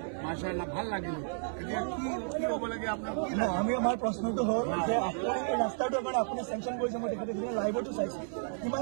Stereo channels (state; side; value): silent; left; 56 dB below the other